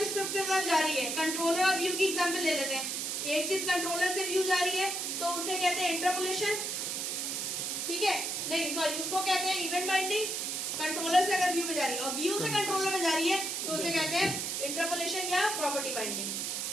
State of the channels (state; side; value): noise; right; hiss, 2 dB below the sound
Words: स्क्रिप्ट की तरफ जा रही है, कंट्रोलर और व्यू की एग्जांपल ले लेते हैं, एक चीज कंट्रोलर से व्यू जा रही है तो उसे कहते हैं इंटरपोलेशन। ठीक है, नहीं सॉरी, उसको कहते हैं इवेंट बाइंडिंग। कंट्रोलर से अगर व्यू में जा रही है और व्यू से कंट्रोलर में जा रही है तो उसे कहते हैं इंटरपोलेशन या प्रॉपर्टी बाइंडिंग।